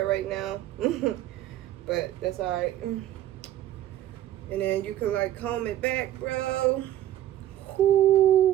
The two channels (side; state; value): left; quieter; 12.9 dB